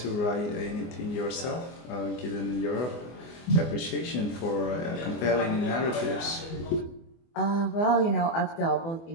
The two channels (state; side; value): late; right; 24 ms